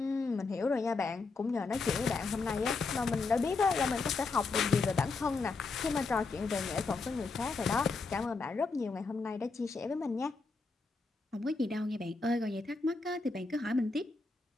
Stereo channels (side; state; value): right; quieter; 4.1 dB